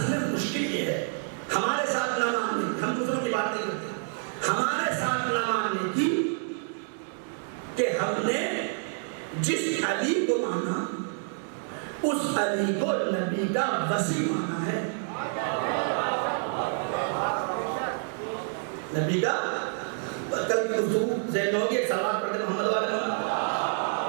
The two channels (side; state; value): left; silent; 59 dB below the other